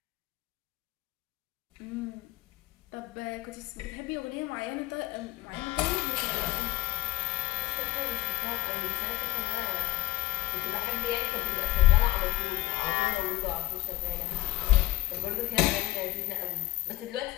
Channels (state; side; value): quieter; right; 17.5 dB